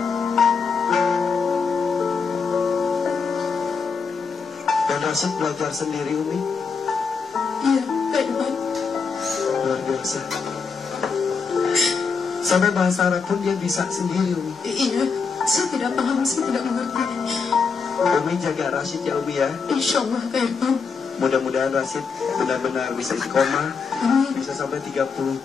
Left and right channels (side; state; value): right; quieter; 5.2 dB